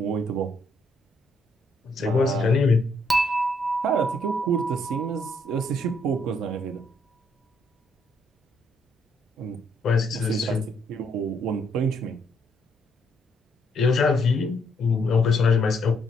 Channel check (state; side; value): normal; both; correlation 0.72